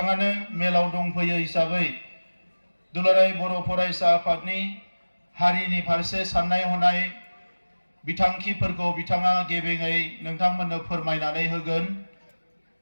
मेलाव दंफैयो हिसाबै दुलाराय बर' फरायसा आफादनि हारिनि फारसे साननाय हनाय बिथांखिफोरखौ बिथाङा गेबेङै नोंथांमोननो फोरमायनानै होगोन।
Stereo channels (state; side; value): inverted; both; correlation -1.00